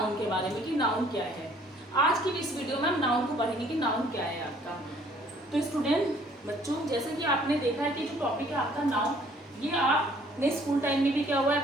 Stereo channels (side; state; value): both; normal; correlation 0.59